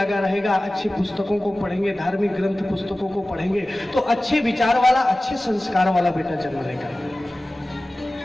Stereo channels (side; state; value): both; normal; correlation 0.97